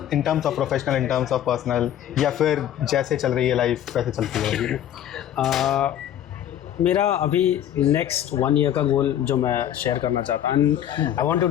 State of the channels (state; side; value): quieter; right; 10.9 dB